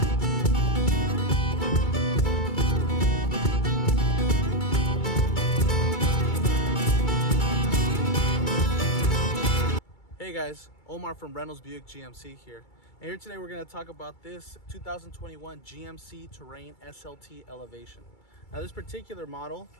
Hey guys, Omar from Reynolds Buick GMC here. And here today we're going to talk about this 2021 GMC Terrain SLT Elevation. Now this particular model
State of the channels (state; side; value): late; right; 2.3 ms